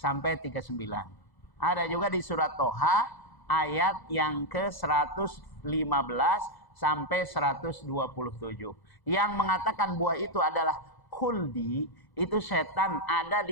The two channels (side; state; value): right; late; 1.0 ms